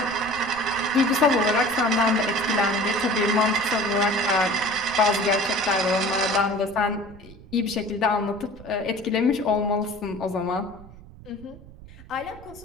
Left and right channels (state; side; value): noise; right; rumble, 19 dB below the sound